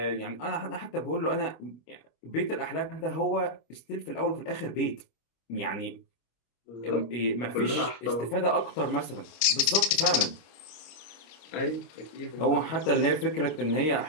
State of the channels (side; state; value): right; late; 26 ms